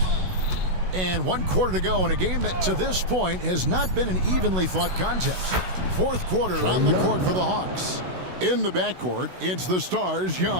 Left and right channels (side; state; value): left; late; 16 ms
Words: And 1 quarter to go in a game that to this point has not been an evenly fought contest. Fourth quarter on the court for the Hawks. In the backcourt, it's the stars